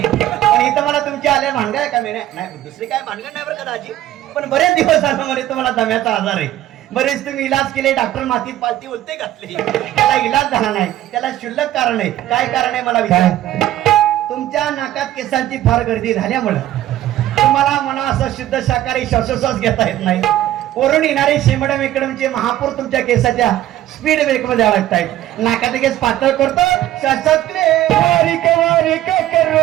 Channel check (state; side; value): quieter; left; 13.5 dB